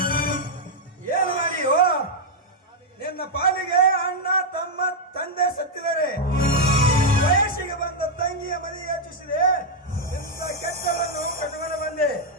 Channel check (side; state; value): both; normal; correlation -0.01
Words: ಏನು ಮಾಡಿಯೋ? ನಿನ್ನ ಪಾಲಿಗೆ ಅಣ್ಣ ತಮ್ಮ ತಂದೆ ಸತ್ತಿದ್ದಾರೆ, ವಯಸ್ಸಿಗೆ ಬಂದ ತಂಗಿಯ ಮನೆಗೆ ಹೆಚ್ಚಿಸಿದೆ, ಇಂಥ ಕೆಟ್ಟವನ್ನು ಕಟ್ಟುಕೊಂಡು ಬಂದೆ.